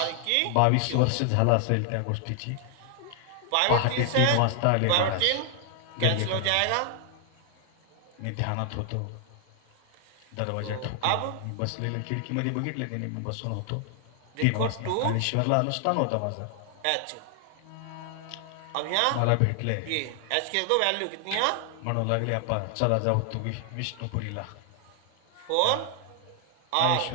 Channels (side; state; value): both; different; correlation 0.00